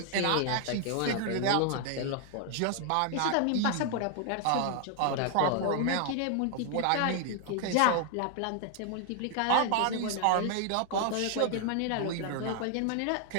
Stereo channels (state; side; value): different; both; correlation 0.00